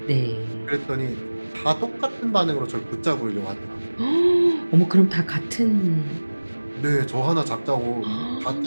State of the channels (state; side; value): inverted; both; correlation -1.00